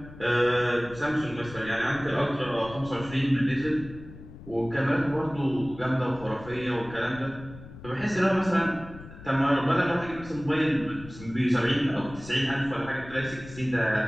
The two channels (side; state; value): left; noise; rumble, 16 dB below the sound